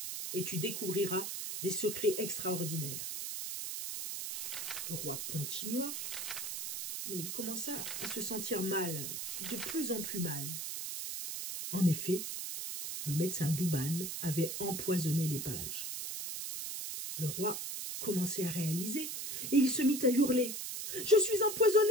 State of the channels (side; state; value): right; noise; hiss, 5 dB below the sound